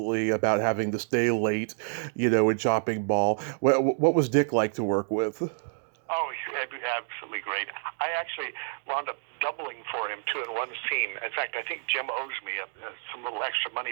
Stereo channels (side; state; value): left; silent; digital silence